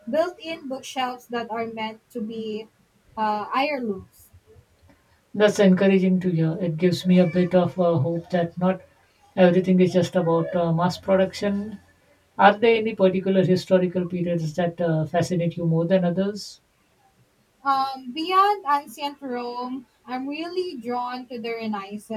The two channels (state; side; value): identical; both; correlation 1.00